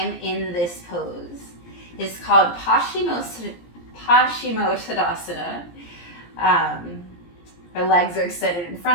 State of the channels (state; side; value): late; right; 17 ms